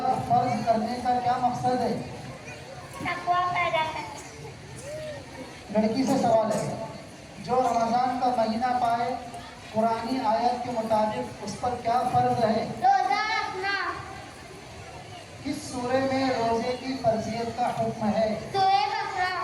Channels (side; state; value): both; identical; correlation 1.00